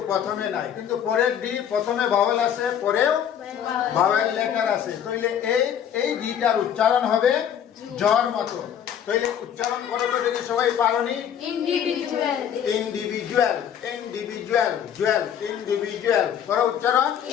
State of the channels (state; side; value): quieter; right; 9.1 dB